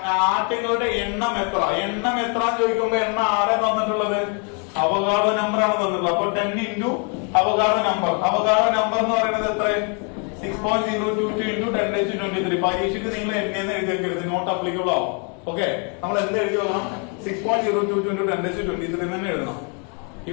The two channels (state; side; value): quieter; right; 38.2 dB